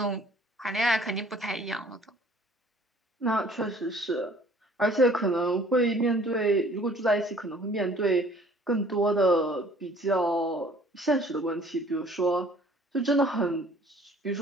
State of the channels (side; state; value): both; normal; correlation 0.54